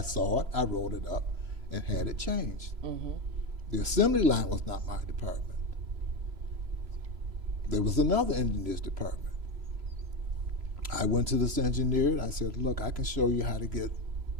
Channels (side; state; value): left; late; 3.0 ms